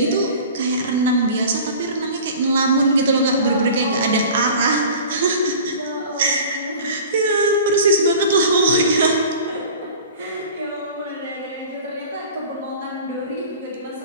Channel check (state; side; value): inverted; both; correlation -0.41